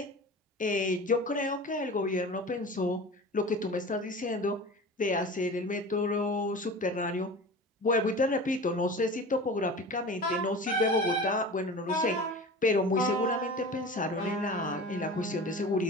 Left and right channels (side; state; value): both; normal; correlation 0.35